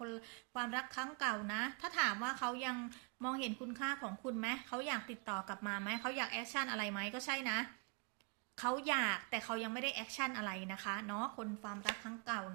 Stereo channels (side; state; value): left; quieter; 35.4 dB